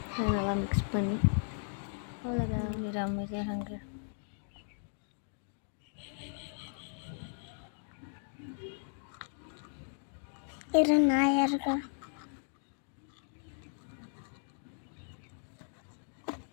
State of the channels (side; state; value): right; silent; digital silence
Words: அதை நல்லா மிக்ஸ் பண்ணி அவ்வளோதான். அமைதியாக நாயா இருக்கா.